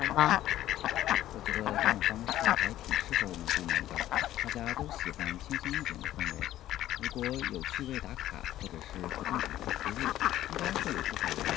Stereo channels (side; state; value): right; quieter; 13.6 dB